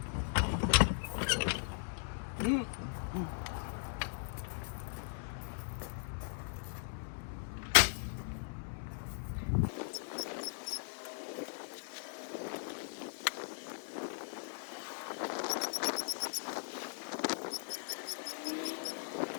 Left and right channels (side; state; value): right; silent; 52 dB below the other